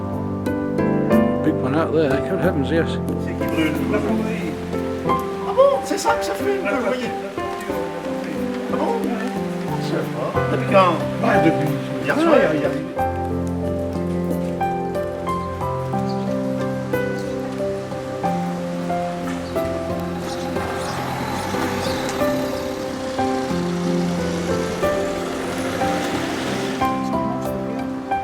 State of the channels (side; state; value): both; identical; correlation 1.00